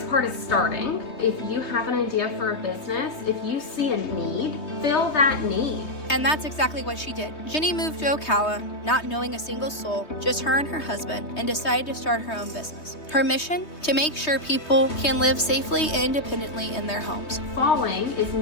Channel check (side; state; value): right; late; 3.2 ms